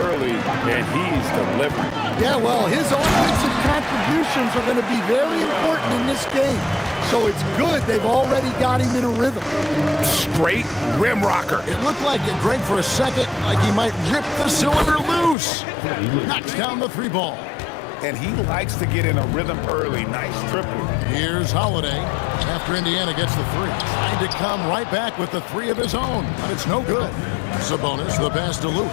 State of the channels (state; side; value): drops out; right; at 15.4 s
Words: and he's delivering. Yeah, well, his offensive contributions are going to be very important in this game. So it's good they've already got him in a rhythm. Straight rim rocker. It looked like it, Greg, for a second, like he might rip the cylinder loose. Knocks down the 3 ball. And he likes to get in a rhythm early. Nice triple. Here's Holiday after Indiana gets the 3. Trying to come right back with the 3 of his own, but it's no good. Sabonis, the pass to